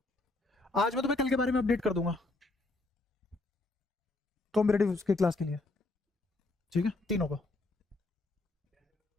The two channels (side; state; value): right; quieter; 3.1 dB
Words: आज मैं तुम्हें कल के बारे में अपडेट कर दूंगा कॉम्पिटेटिव के क्लास के लिए। ठीक है, तीनों को।